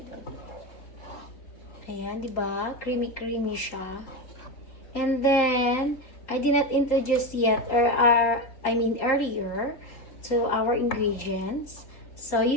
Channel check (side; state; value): right; late; 3.8 ms